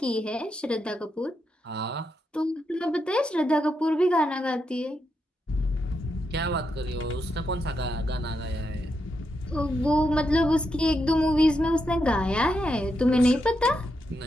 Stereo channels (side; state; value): both; normal; correlation 0.84